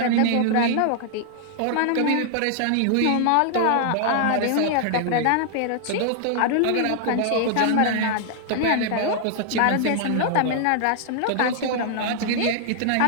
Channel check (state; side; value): different; both; correlation 0.00